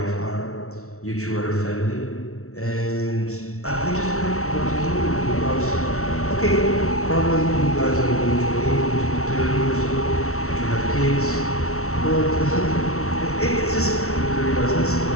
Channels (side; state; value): right; late; 0.63 ms